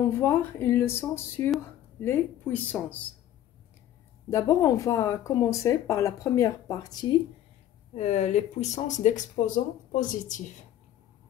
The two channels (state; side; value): quieter; right; 12.0 dB